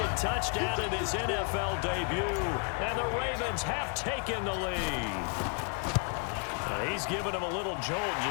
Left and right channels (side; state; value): right; quieter; 39.1 dB